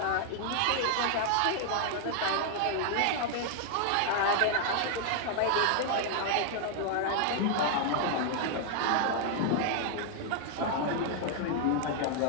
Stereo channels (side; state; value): both; different; correlation 0.00